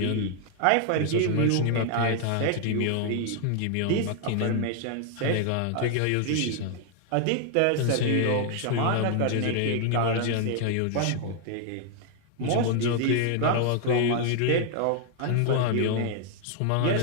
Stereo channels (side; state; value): both; different; correlation 0.00